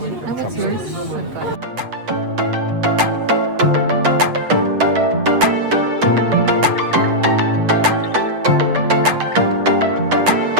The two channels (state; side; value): late; left; 8.0 ms